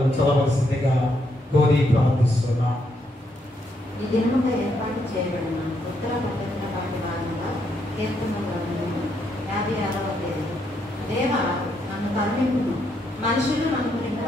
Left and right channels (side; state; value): both; normal; correlation 0.76